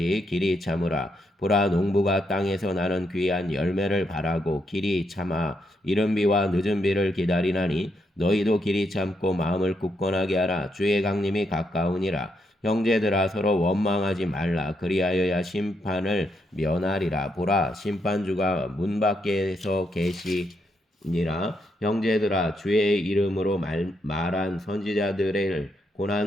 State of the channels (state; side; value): normal; both; correlation 0.79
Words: 길이 참으라. 보라 농부가 땅에서 나는 귀한 열매를 바라고 길이 참아 이른 비와 늦은 비를 기다리나니 너희도 길이 참고 마음을 굳건하게 하라. 주의 강림이 가까우니라. 형제들아 서로 원망하지 말라. 그리하여야 심판을 면하리라. 보라 심판주가 문 밖에서 계시니라. 형제들아 주의 이름으로 말한 선지자들의